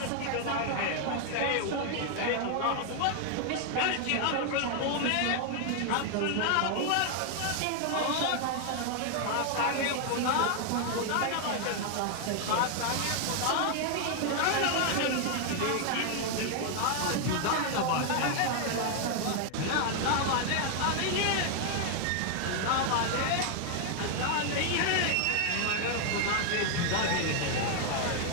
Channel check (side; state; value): both; different; correlation 0.00